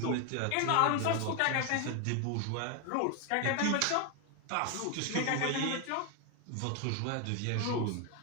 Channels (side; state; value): both; different; correlation 0.01